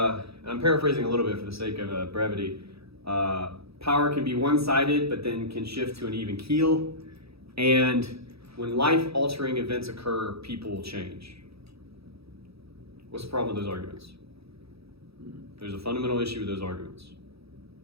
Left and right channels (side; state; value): left; late; 0.77 ms